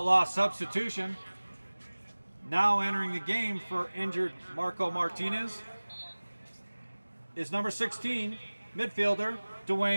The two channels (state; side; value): inverted; both; correlation -1.00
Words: substitution. Now entering the game for injured Marco Martinez is number 16, midfielder